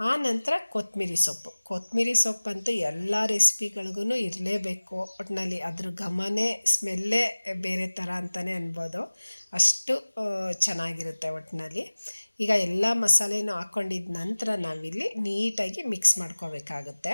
ನಂತರ ಕೊತ್ತಂಬರಿ ಸೊಪ್ಪಂತೂ ಎಲ್ಲ ರೆಸಿಪಿಗಳಿಗೂ ಇರಲೇಬೇಕು. ಒಟ್ಟಿನಲ್ಲಿ ಅದ್ರ ಘಮನೇ ಸ್ಮೆಲ್ಲೇ ಬೇರೆ ಥರ ಅಂತಲೇ ಅನ್ಬೋದು, ಅಷ್ಟು ಚೆನ್ನಾಗಿರುತ್ತೆ ಒಟ್ಟಿನಲ್ಲಿ. ಈಗ ಎಲ್ಲ ಮಸಾಲೆನೂ ಹಾಕ್ಕೊಂಡಿದ್ದ ನಂತರ ನಾವಿಲ್ಲಿ ನೀಟಾಗಿ ಮಿಕ್ಸ್ ಮಾಡ್ಕೋಬೇಕಾಗುತ್ತೆ.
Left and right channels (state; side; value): inverted; both; correlation -1.00